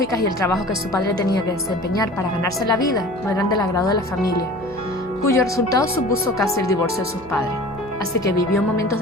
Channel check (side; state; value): right; noise; hum, 22 dB below the sound